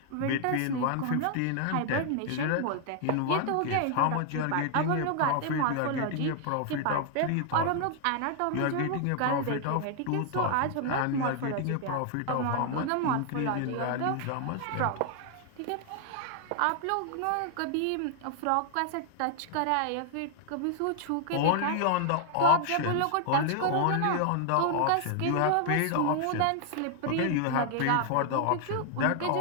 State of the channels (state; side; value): different; both; correlation 0.00